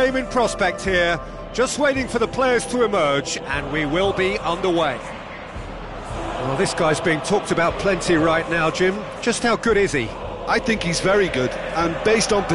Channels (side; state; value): both; identical; correlation 1.00